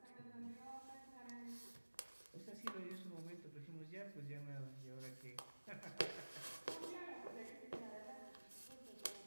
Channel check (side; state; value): both; inverted; correlation -1.00